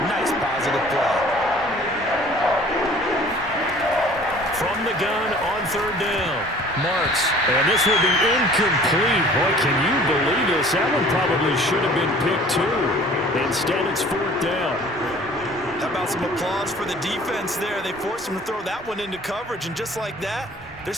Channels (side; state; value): both; normal; correlation 0.50